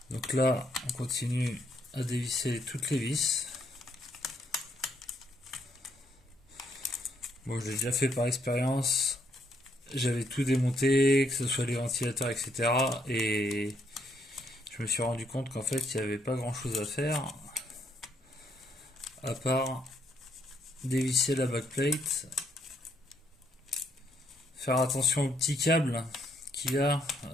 Donc là, on continue à dévisser toutes les vis. Bon, je l'ai déjà fait par expérience. J'avais tout démonté, que ce soit les ventilateurs, etc. Et je me suis rendu compte qu'en fait, il n'y avait pas grand chose à faire à part dévisser la backplate, faire attention aux petits câbles qu'il y a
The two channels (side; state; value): both; normal; correlation 0.73